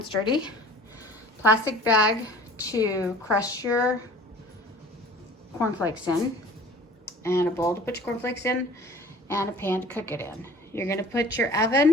dirty. Plastic bag to crush your corn flakes in, and a bowl to put your corn flakes in, and a pan to cook it in. You're gonna put your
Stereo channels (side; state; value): both; normal; correlation 0.46